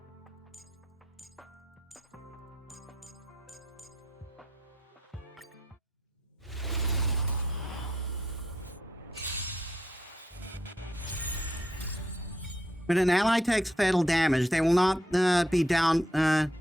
When an ally takes fatal damage, they will not be down,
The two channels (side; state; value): both; normal; correlation 0.77